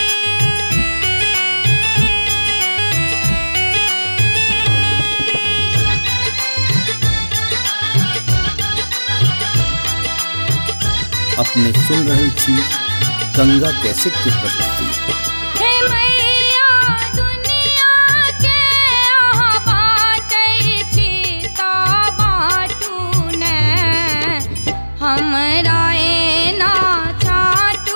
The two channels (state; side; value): inverted; both; correlation -1.00